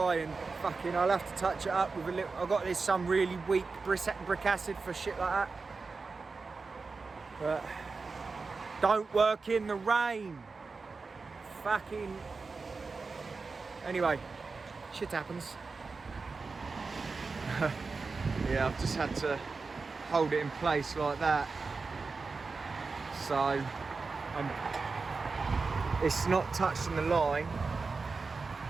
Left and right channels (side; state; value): left; quieter; 4.3 dB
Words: and fucking, I'll have to touch it up with a little. I've got this some really weak brick acid for shit like that. But don't work in the rain. Fucking. Anyway, shit happens. Yeah, I've just had to hold it in place like that. So it's not touching the line,